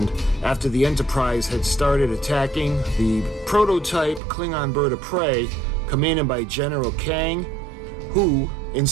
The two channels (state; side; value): drops out; left; at 4.2 s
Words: after the Enterprise had started attacking the prototype Klingon bird of prey, commanded by General Kang, who,